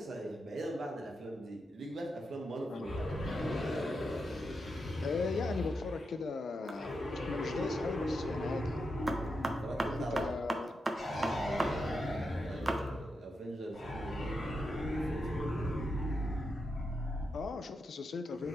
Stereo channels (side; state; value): both; normal; correlation 0.86